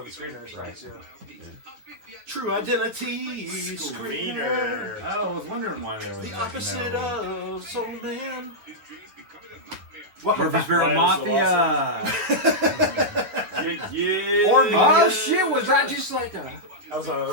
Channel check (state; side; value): late; left; 9.7 ms